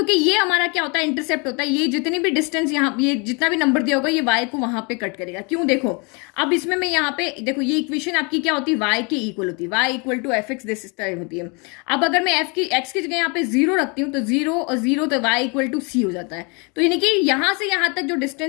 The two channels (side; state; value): right; quieter; 31.0 dB